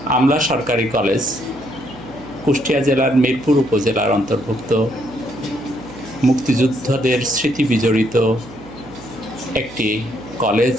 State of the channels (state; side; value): noise; right; hum, 18 dB below the sound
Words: আমলা সরকারি কলেজ কুষ্টিয়া জেলার মিরপুর উপজেলার অন্তর্ভুক্ত মুক্তিযোদ্ধাদের স্মৃতি বিজড়িত একটি কলেজ,